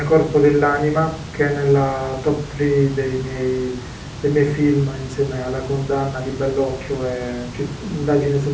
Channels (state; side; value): identical; both; correlation 1.00